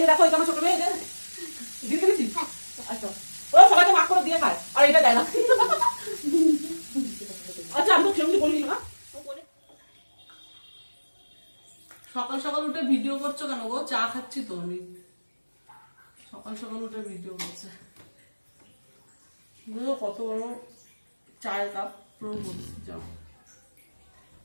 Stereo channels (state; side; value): inverted; both; correlation -1.00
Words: যে দেখো এটা আমার ছোট মেয়ে, দিদি খেয়েছিস? আচ্ছা, ওরা সবাইকে ভাগ করে দিয়ে খায় আর এটা দেয় না। আচ্ছা আমি তো সেরকম বলিনি না। সকাল সকাল উঠে ভিডিও করছো কেন গো? চা খাচ্ছি তো আমি। সকাল সকাল উঠে ভিডিও করছে, কত বড় চায়ের কাপ পুরো ভর্তি যাও।